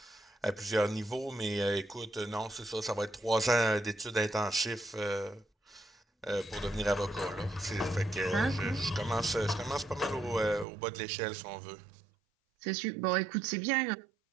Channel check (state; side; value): drops out; left; at 10.7 s